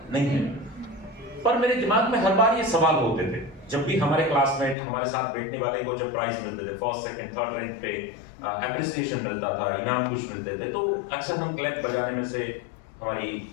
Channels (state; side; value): drops out; right; at 4.8 s